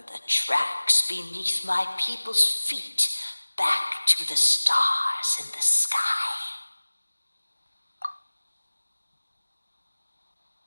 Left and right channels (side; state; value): both; inverted; correlation -1.00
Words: the tracks beneath my people's feet back to the stars in the sky.